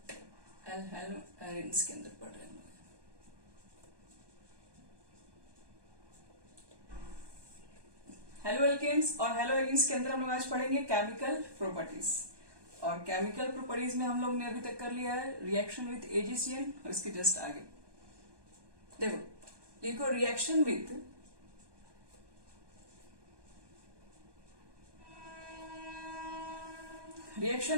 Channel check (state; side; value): late; left; 1.2 ms